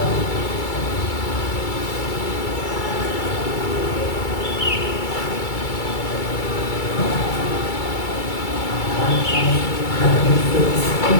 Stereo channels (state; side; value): late; right; 2.3 ms